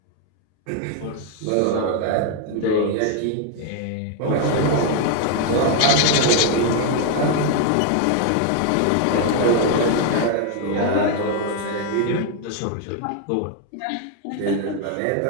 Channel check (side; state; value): both; different; correlation 0.00